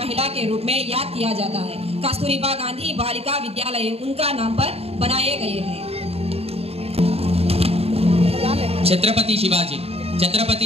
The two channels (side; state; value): left; late; 0.29 ms